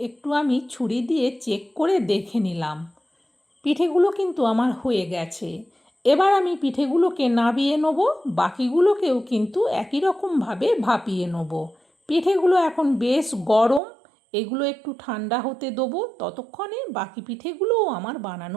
একটু আমি ছুরি দিয়ে চেক করে দেখে নিলাম। পিঠেগুলো কিন্তু আমার হয়ে গেছে। এবার আমি পিঠেগুলোকে নাবিয়ে নেব, বাকিগুলোকেও কিন্তু একই রকমভাবে ভাপিয়ে নেব। পিঠেগুলো এখন বেশ গরম, এগুলো একটু ঠান্ডা হতে দেবো। ততক্ষণে বাকি পিঠেগুলোও আমার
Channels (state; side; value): drops out; left; at 13.8 s